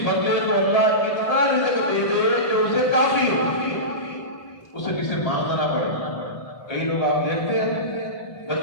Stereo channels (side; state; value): right; late; 1.8 ms